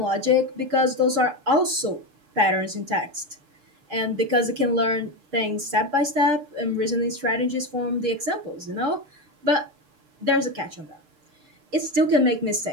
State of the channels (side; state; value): left; late; 6.7 ms